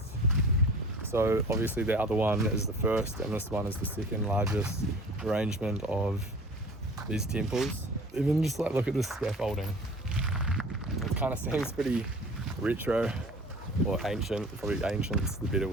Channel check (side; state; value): both; normal; correlation 0.44